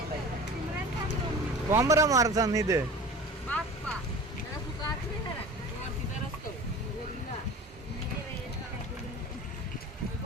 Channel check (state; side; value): normal; both; correlation 0.38